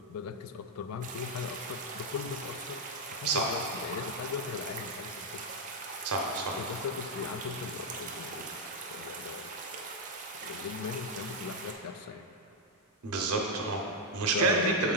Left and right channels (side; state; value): both; normal; correlation 0.00